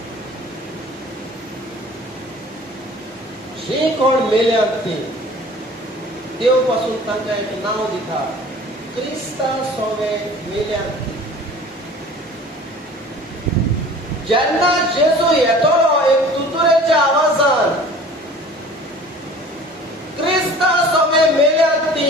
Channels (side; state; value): both; normal; correlation 0.45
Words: जे कोण मेल्यात ती देव पासून तांकां एक नाव दिता, क्रिस्ता सोबे मेल्यात ती. जेन्ना जेजू येतलो एक तुतुरेच्या आवाजान, क्रिस्ता सोबे मेल्यात ती